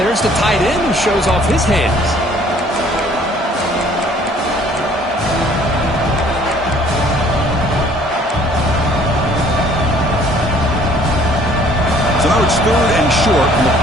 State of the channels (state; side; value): normal; both; correlation 0.57